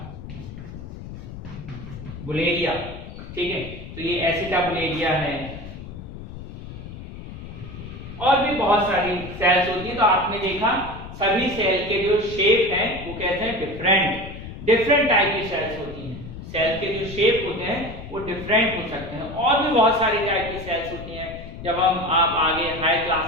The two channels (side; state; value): left; noise; rumble, 12 dB below the sound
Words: ठीक है, तो ये एसिटाबुलेरिया है। और भी बहुत सारी सेल्स होती है। तो आपने देखा सभी सेल के जो शेप हैं वो कहते हैं डिफरेंट टाइप की सेल्स होती हैं। सेल के जो शेप होते हैं वो डिफरेंट हो सकते हैं। और भी बहुत सारी टाइप की सेल्स होती हैं। जब आप आगे हाई